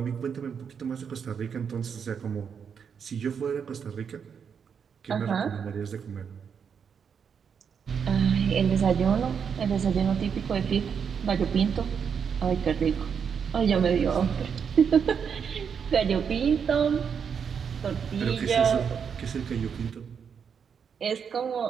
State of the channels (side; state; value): left; quieter; 6.9 dB